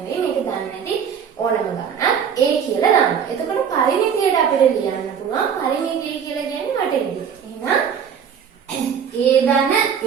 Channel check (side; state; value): left; quieter; 7.6 dB